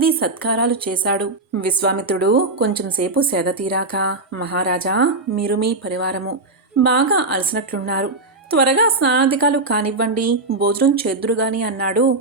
సత్కారాలు చేశాడు. విశ్వామిత్రుడు కొంచెంసేపు సేద తీరాక, మహారాజా, మీరు మీ పరివారము బాగా అలసినట్లున్నారు, త్వరగా స్నానాధికాలు కానివ్వండి, భోజనం చేద్దురుగాని అన్నాడు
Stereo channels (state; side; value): quieter; left; 3.1 dB